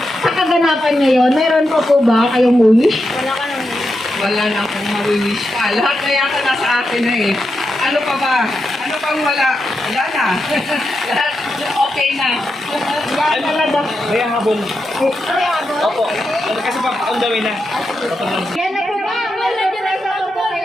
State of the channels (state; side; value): normal; both; correlation 0.87